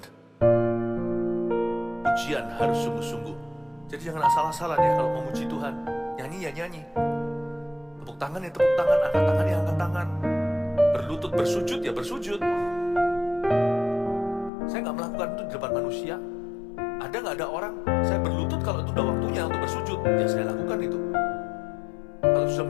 Pujian harus sungguh-sungguh. Jadi jangan asal-asalan ya kalau memuji Tuhan. Nyanyi ya nyanyi, tepuk tangan ya tepuk tangan, angkat tangan ya angkat tangan, berlutut bersujud ya bersujud. Saya nggak melakukan itu di depan manusia. Ada nggak ada orang saya berlutut kalau itu udah waktunya untuk bersujud, ya saya lakukan itu. Kalau sudah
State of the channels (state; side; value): drops out; right; at 14.5 s